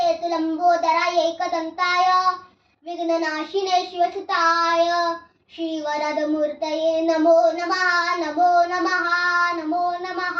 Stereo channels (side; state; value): both; identical; correlation 1.00